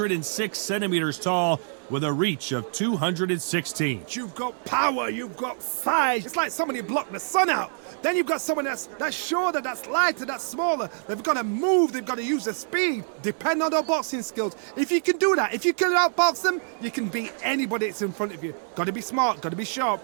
centimeters tall with a reach of 216. You've got power, you've got size. It's like somebody blocked the sun out. Then you've got someone that's shorter, that's lighter, that's smaller. They've got to move, they've got to use their speed. Depend on their boxing skills. If you can do that, if you can outbox them, you can beat anybody that's in front of you. Got to be smart, got to be sharp,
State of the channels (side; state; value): left; silent; digital silence